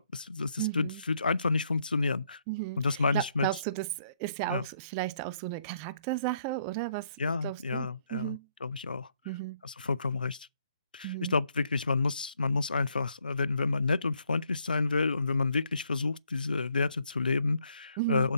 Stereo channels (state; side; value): inverted; both; correlation -0.71